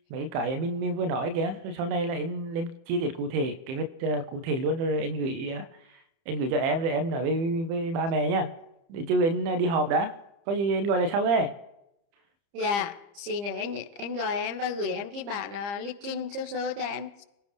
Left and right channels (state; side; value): late; left; 30 ms